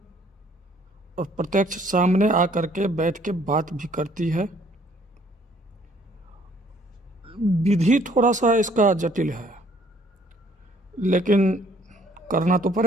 और प्रत्यक्ष सामने आकर के बैठ के बात भी करती है। विधि थोड़ा सा इसका जटिल है, लेकिन करना तो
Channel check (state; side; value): normal; both; correlation 0.61